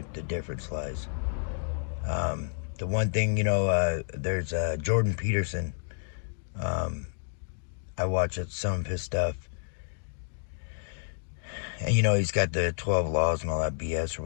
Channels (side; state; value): right; silent; digital silence